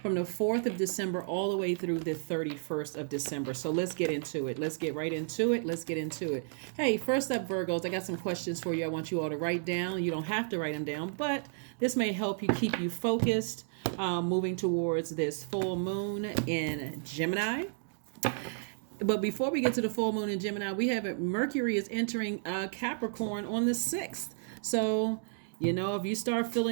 From the 4th of December all the way through the 31st of December. So let's get into it. Let's get right into it. Let's get into it. Hey, first up, Virgos, I got some questions for you. I want you all to write down. You don't have to write them down, but this may help you keep you focused moving towards this full moon in Gemini. But before we get to the full moon in Gemini, we have Mercury is entering Capricorn on the 6th. So, if you start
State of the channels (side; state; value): left; silent; digital silence